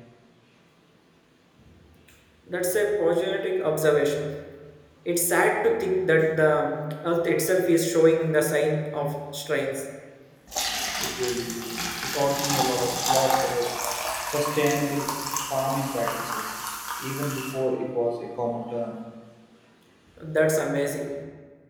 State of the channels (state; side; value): identical; both; correlation 1.00